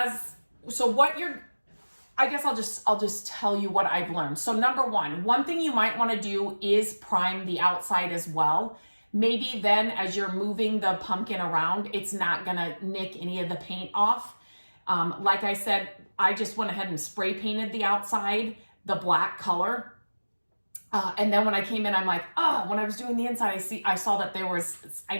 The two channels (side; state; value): both; inverted; correlation -1.00